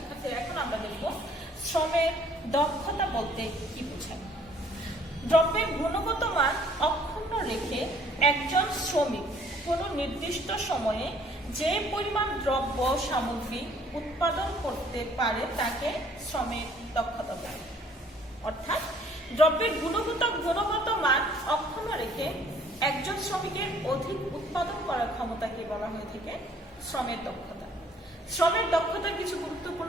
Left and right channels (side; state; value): both; normal; correlation 0.59